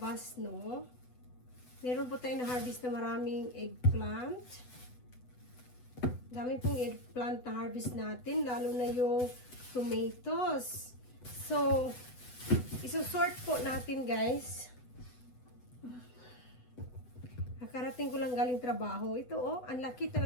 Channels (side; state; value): right; late; 8.0 ms